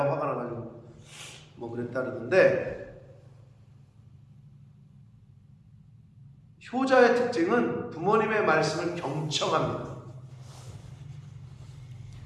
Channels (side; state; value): both; identical; correlation 1.00